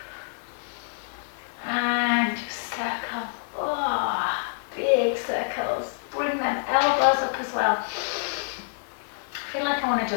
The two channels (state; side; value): silent; right; digital silence